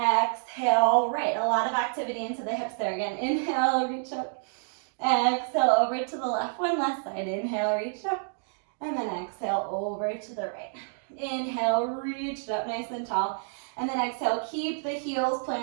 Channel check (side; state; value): left; silent; digital silence